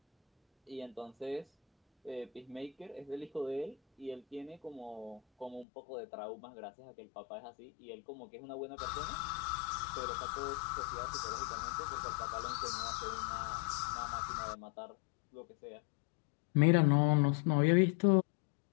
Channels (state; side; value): drops out; right; at 5.7 s